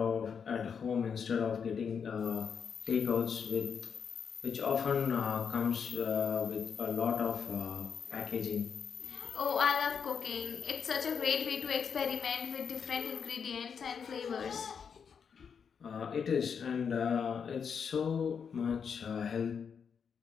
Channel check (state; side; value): quieter; right; 6.7 dB